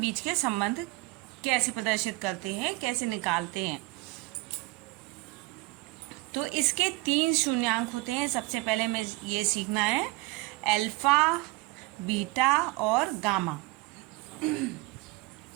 के संबंध कैसे प्रदर्शित करते हैं, कैसे निकालते हैं। तो इसके 3 शून्यांक होते हैं। सबसे पहले हमें ये सीखना है अल्फा, बीटा और गामा।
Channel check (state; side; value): quieter; left; 22.1 dB